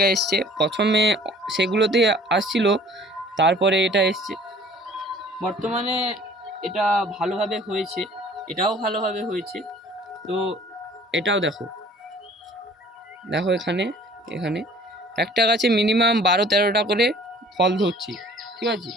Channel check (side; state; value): both; normal; correlation 0.52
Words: এসছে। প্রথমে সেগুলোতে আসছিল, তারপরে এটা এসছে। বর্তমানে এটা ভালোভাবে হয়েছে, এটাও ভালোভাবে হয়েছে। তো এটাও দেখো, দেখো এখানে এখানে একটা গাছে মিনিমাম 12-13টা করে ফল ধরছে, ঠিক আছে।